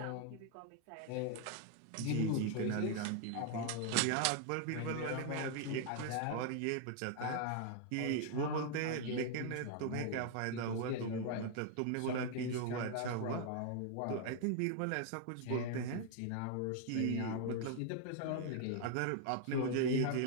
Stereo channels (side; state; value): both; different; correlation 0.00